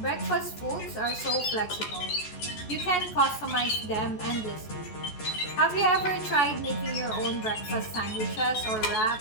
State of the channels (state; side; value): late; right; 14 ms